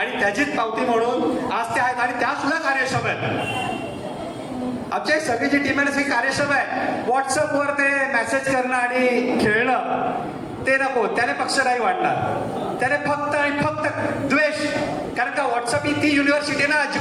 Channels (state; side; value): identical; both; correlation 1.00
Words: त्याचीच पावती म्हणून आज ते आहेत आणि त्या सुद्धा कार्यक्षम आहेत. आमच्या सगळी जी टीम आहे सगळी कार्यक्षम आहे. व्हॉट्सअपवर ते मेसेज करणं आणि खेळणं ते नको, त्याने पक्ष नाही वाढणार. त्याने फक्त आणि फक्त द्वेष. कारण का व्हॉट्सअप ही ती युनिव्हर्सिटी ना